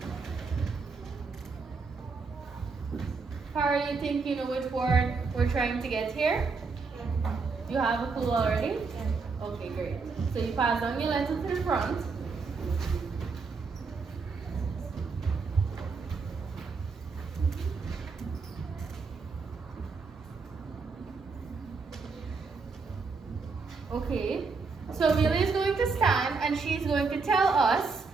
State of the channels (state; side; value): quieter; left; 4.5 dB